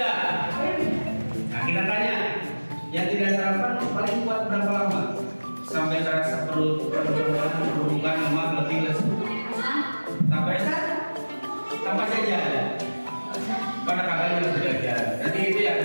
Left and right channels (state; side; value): inverted; both; correlation -1.00